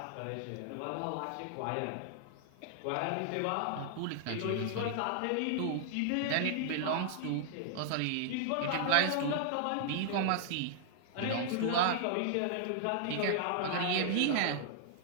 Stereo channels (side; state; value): both; different; correlation -0.01